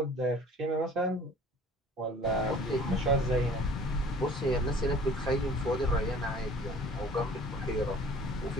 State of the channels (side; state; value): both; normal; correlation 0.49